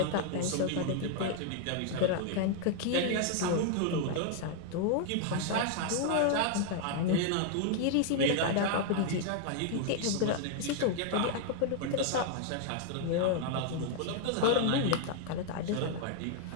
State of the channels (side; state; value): both; different; correlation 0.00